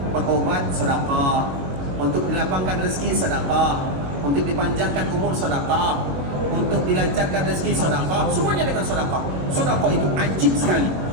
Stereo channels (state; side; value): late; left; 22 ms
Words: berobat sedekah, untuk dilapangkan rezeki sedekah, untuk dipanjangkan umur sedekah, untuk dilancarkan rezeki sedekah, semuanya dengan sedekah. Sedekah itu ajib sekali